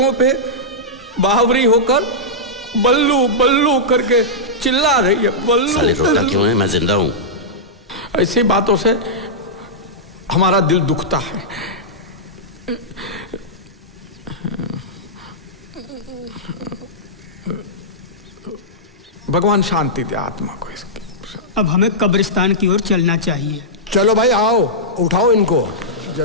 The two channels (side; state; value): both; normal; correlation -0.12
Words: पे बावरी होकर बल्लू बल्लू करके चिल्ला रही है। साले रोता बल्लू। क्यों है? मैं जिंदा हूं। ऐसी बातों से हमारा दिल दुखता है। भगवान शांति दे आत्मा को इसकी। अब हमें कब्रिस्तान की ओर चलना चाहिए। चलो भाई आओ, उठाओ इनको